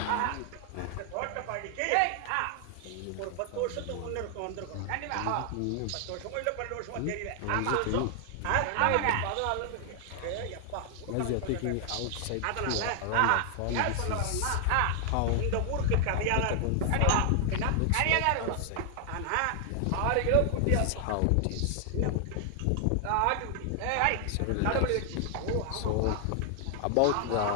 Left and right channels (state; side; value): different; both; correlation 0.00